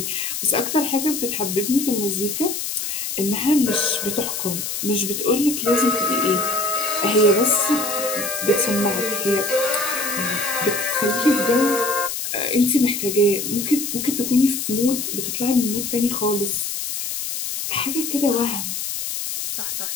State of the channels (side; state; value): left; noise; hiss, 4 dB below the sound